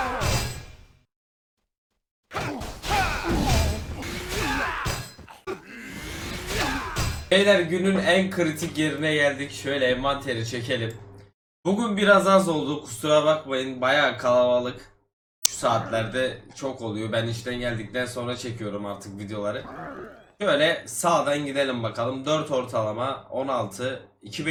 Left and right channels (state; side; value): identical; both; correlation 1.00